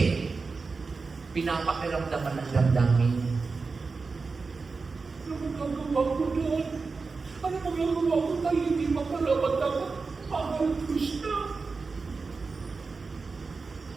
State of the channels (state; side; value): quieter; left; 4.4 dB